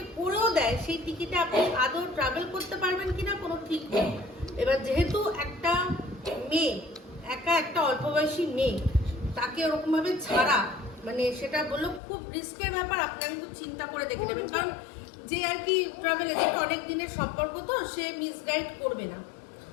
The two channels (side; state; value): right; drops out; at 12.0 s